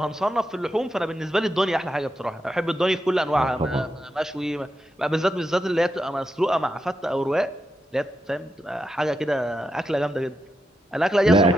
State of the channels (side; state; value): both; normal; correlation 0.86